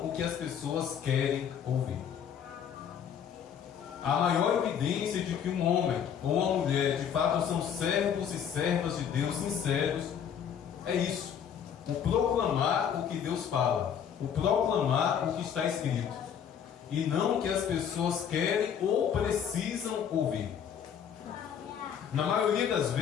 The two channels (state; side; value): quieter; right; 8.3 dB